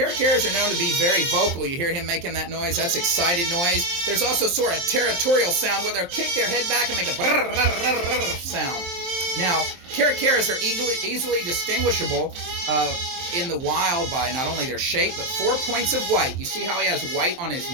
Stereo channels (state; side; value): late; left; 23 ms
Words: are known to be very vocal. You hear him making that noise? That's excited noise. There's also sort of territorial sound where they'll kick their head back and make a brrr, brrr, brrr, brrr sound. Now, caracaras are easily distinguishable in the wild by not only their shape, but 4 points of white. You see how he has white on his